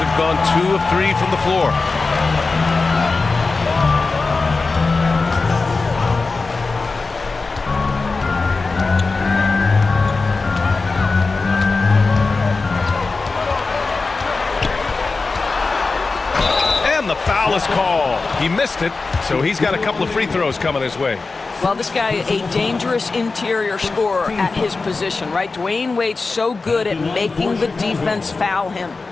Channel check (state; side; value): quieter; right; 3.9 dB